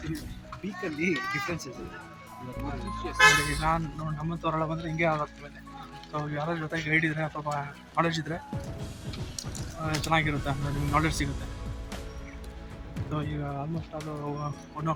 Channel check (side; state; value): both; identical; correlation 1.00